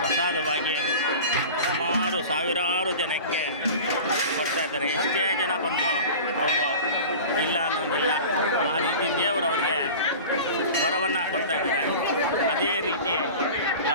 ಸುಮಾರು ಸಾವಿರಾರು ಜನಕ್ಕೆ ಕೊಡ್ತಾ ಇದ್ದಾರೆ. ಎಷ್ಟೇ ಜನ ಬಂದರೂ ಅವರು ಇಲ್ಲ ಅನ್ನೋಂಗಿಲ್ಲ. ಆ ರೀತಿ ದೇವರು ಅವರಿಗೆ ವರವನ್ನು ಕೊಡ್ತಾ ಇದ್ದಾರೆ. ಅದೇ ರೀತಿ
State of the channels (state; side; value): inverted; both; correlation -0.36